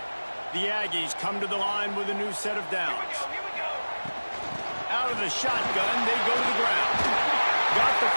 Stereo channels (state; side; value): inverted; both; correlation -1.00